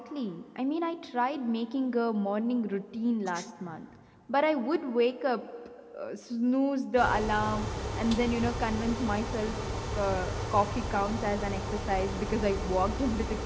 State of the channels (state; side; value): identical; both; correlation 1.00